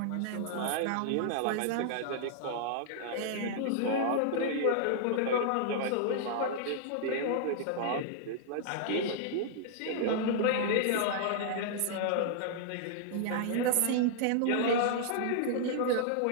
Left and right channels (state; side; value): different; both; correlation -0.01